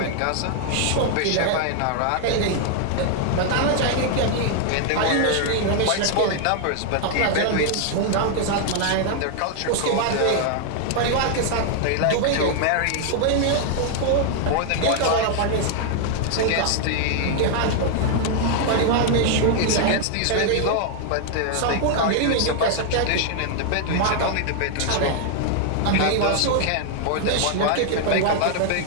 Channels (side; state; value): both; different; correlation 0.00